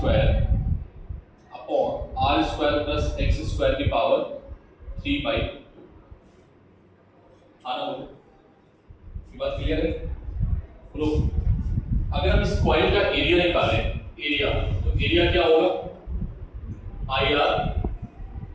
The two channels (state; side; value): identical; both; correlation 1.00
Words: upon r square plus x square की पावर 3 बाई 2। आना बोलो, ये बात क्लियर है? बोलो, अगर हम इस कॉइल का एरिया निकालें, एरिया, तो एरिया क्या होगा, पाई आर